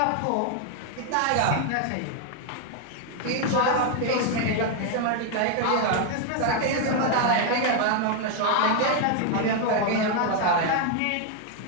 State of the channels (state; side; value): different; both; correlation 0.00